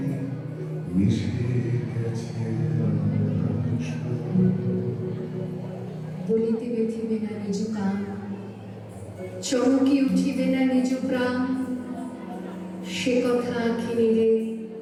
মিশে গেছে বলিতে ব্যথিবে না নিজ কান, চমকি উঠিবে না নিজ প্রাণ, সে কথা আঁখি নিরে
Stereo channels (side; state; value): both; identical; correlation 1.00